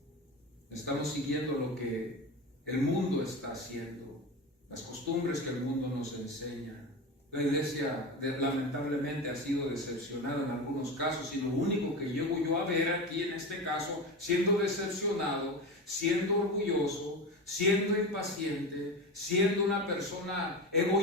estamos siguiendo lo que el mundo está haciendo, las costumbres que el mundo nos enseña. La iglesia lamentablemente ha sido decepcionada en algunos casos, y lo único que llego yo a ver aquí en este caso, siendo decepcionado, siendo orgulloso, siendo impaciente, siendo una persona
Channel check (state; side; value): normal; both; correlation 0.24